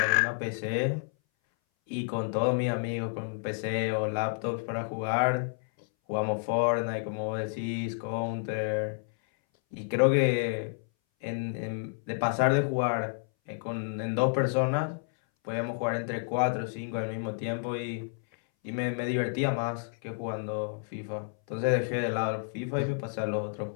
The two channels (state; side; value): silent; right; 58 dB below the other